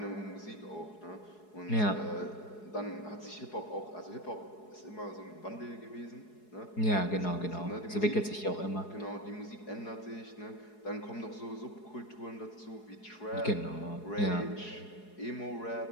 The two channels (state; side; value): late; right; 4.7 ms